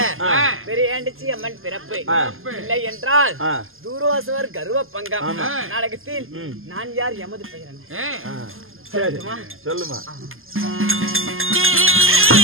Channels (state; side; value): late; left; 0.60 ms